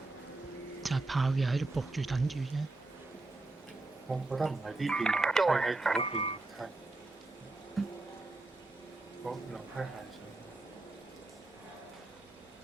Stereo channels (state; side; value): quieter; left; 3.1 dB